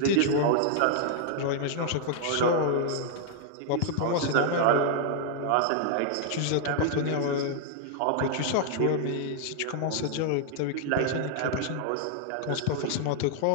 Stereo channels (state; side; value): different; both; correlation 0.00